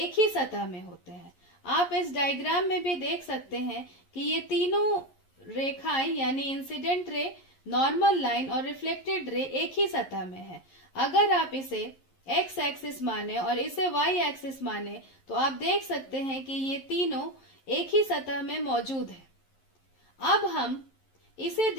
ही सतह में होते हैं। आप इस डायग्राम में भी देख सकते हैं कि ये तीनों रेखाएं यानी इंसिडेंट रे, नॉर्मल लाइन और रिफ्लेक्टेड रे एक ही सतह में है। अगर आप इसे एक्स एक्सिस माने और इसे वाई एक्सिस माने तो आप देख सकते हैं कि ये तीनों एक ही सतह में मौजूद है। अब हम इसे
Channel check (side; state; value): right; late; 11 ms